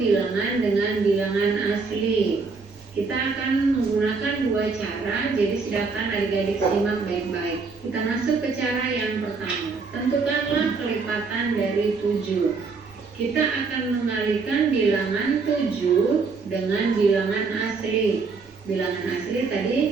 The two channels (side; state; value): left; quieter; 4.5 dB